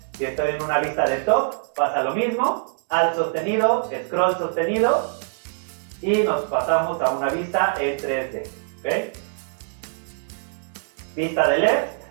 Si estoy en una vista de top, pasa lo mismo, Alt sostenido, scroll sostenido, y nos pasamos a una vista en 3D. ¿Okay? Vista de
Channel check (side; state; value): left; silent; digital silence